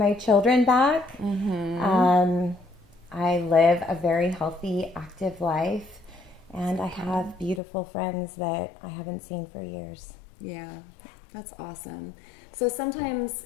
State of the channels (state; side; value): drops out; right; at 7.6 s